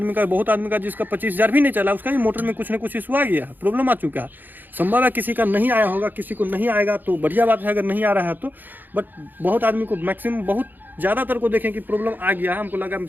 का, बहुत आदमी का जिसका 25,000 भी नहीं चला, उसका ही मोटर में कुछ ना कुछ इशू आ गया है, प्रॉब्लम आ चुका है। संभव है किसी का नहीं आया होगा, किसी को नहीं आएगा तो बढ़िया बात है अगर नहीं आ रहा है तो। बट बहुत आदमी को, मैक्सिमम बहुत ज़्यादातर को देखें कि प्रॉब्लम आ गया है। हमको लगा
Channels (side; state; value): left; late; 0.089 ms